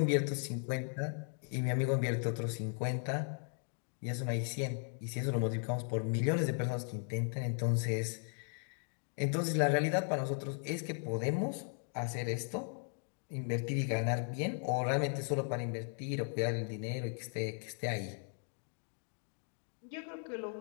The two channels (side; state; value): right; silent; 53 dB below the other